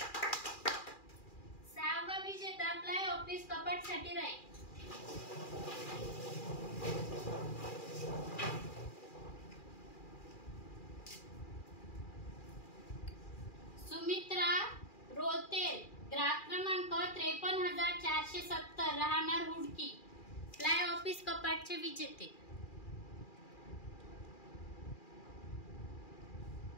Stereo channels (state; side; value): late; right; 2.4 ms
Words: सहावा विजेता प्लाय ऑफिस कपाट साठी राहील. सुमित्रा रोतेल, ग्राहक क्रमांक 53,470, राहणार हुडकी, प्लाय ऑफिस कपाटचे विजेते.